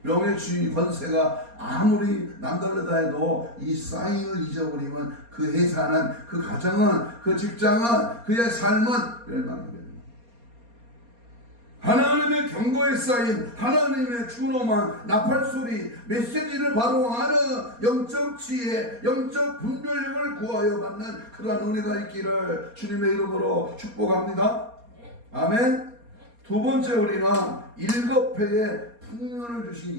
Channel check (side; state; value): left; late; 4.3 ms